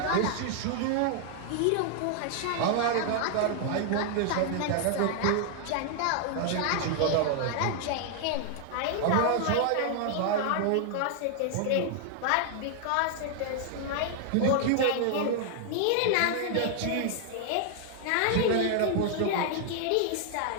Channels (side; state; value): both; different; correlation 0.00